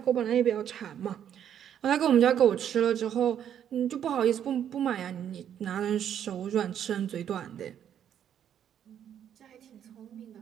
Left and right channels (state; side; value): quieter; left; 9.5 dB